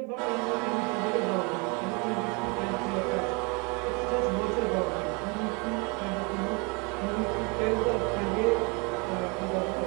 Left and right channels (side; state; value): left; quieter; 30.8 dB